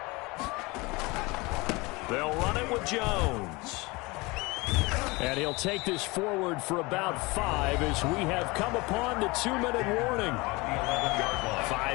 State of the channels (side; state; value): right; quieter; 24.2 dB